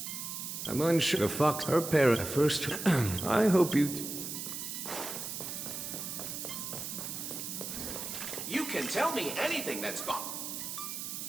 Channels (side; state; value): right; noise; hiss, 6 dB below the sound